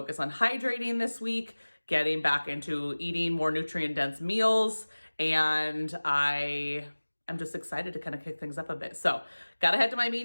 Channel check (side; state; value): both; inverted; correlation -1.00